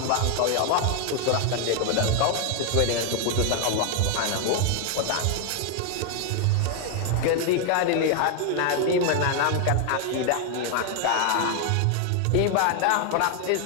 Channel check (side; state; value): both; different; correlation 0.00